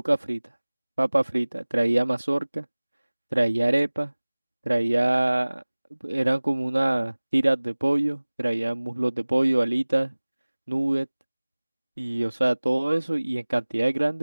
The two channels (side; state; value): both; inverted; correlation -1.00